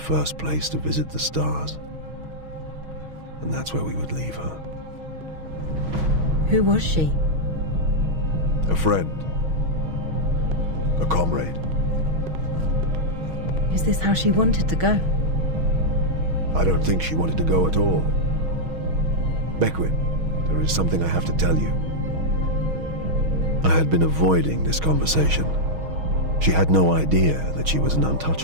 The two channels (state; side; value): late; left; 6.3 ms